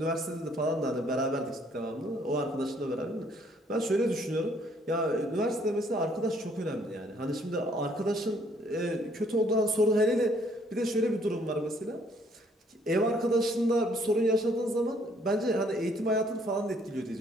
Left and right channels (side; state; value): both; normal; correlation 0.64